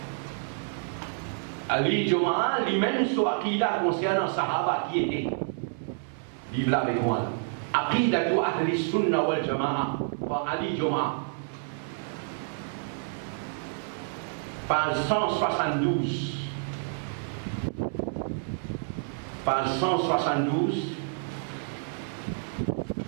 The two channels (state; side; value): silent; left; 59 dB below the other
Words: Ali Goma lui-même, soit qui a concernant Sahaba qui était. Vive là avec moi. Aqidatu Ahli Sunna wal Jama'a. Par Ali Goma. Page 172. Page 172.